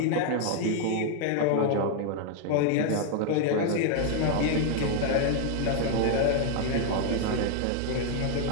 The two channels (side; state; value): both; different; correlation 0.00